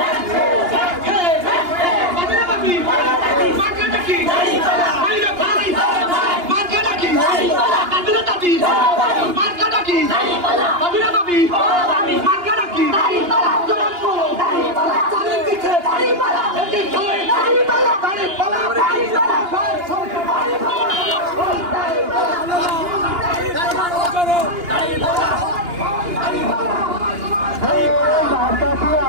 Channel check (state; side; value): late; left; 2.9 ms